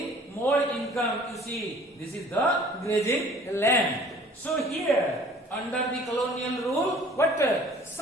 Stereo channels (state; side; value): normal; both; correlation 0.51